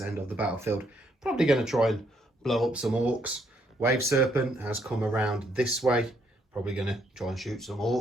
end of the battlefield. Probably going to try and blow up some Orks. Wave Serpent has come around this way. Probably going to try and shoot some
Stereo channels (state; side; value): normal; both; correlation 0.72